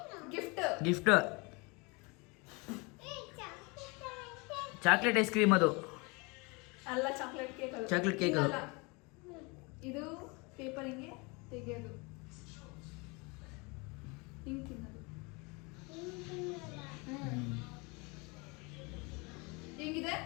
ಗಿಫ್ಟ್ ಚಾಕ್ಲೇಟ್ ಐಸ್ ಕ್ರೀಮ್ ಅದು ಅಲ್ಲ ಚಾಕ್ಲೇಟ್ ಕೇಕ್ ಚಾಕ್ಲೇಟ್ ಕೇಕ್ ಅದು ಇದು ಪೇಪರ್ ಹಿಂಗೆ ತೆಗೆಯೋದು ಹಿಂಗೆ ತಿನ್ನೋದು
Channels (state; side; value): quieter; right; 28.5 dB